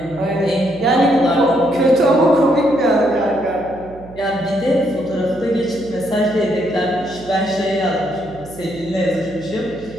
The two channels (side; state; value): right; noise; hum, 19 dB below the sound